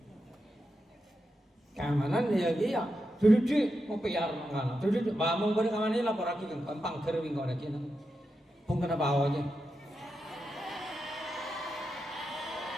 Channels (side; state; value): both; normal; correlation 0.88